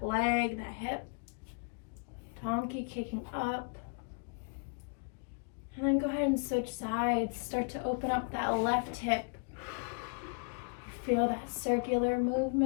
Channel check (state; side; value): quieter; right; 38.4 dB